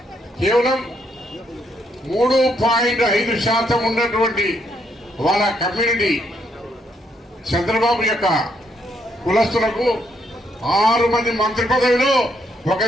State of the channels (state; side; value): normal; both; correlation 0.74